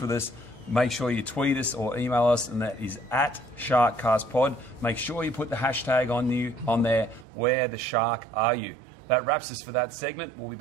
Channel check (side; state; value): left; drops out; at 7.2 s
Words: with us. Make sure you tweet us or email us, and that is at SharkCastPod. Make sure you put the hashtag on there, where the Shark are you? That wraps us for that segment. We'll be